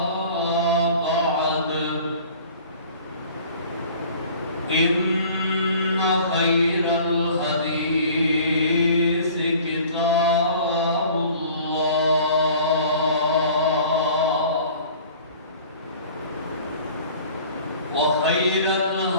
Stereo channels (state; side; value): inverted; both; correlation -0.47